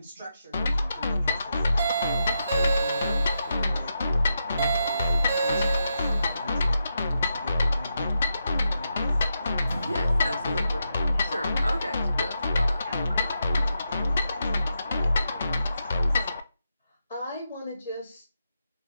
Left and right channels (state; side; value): inverted; both; correlation -0.85